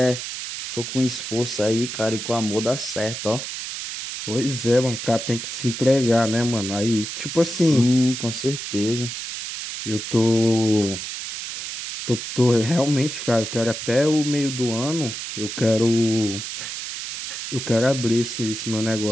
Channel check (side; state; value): right; noise; hiss, 7 dB below the sound